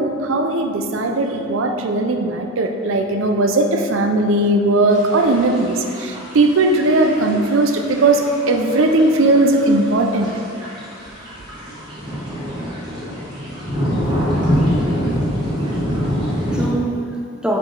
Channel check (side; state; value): both; normal; correlation 0.29